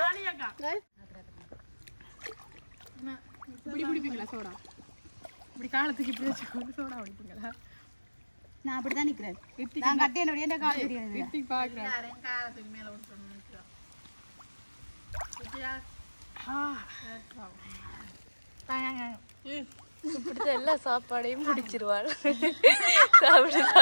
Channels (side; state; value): both; inverted; correlation -1.00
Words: இப்படி குடிப்பீங்களா சோடா இப்படி காலத்துக்கு இப்படி வச்சு சோடா குடிப்பீங்களா நான் அப்படிதான் நிக்கிறேன் நான் கட்டி என்னுடைய கால் தெரியாது ரித்திக் பாக்குறேன் காலத்துக்கு மேல ஒன்று பிடிச்ச எல்லா சாப்பாடையும் பிடிச்சிருவாள் சாப்பிடு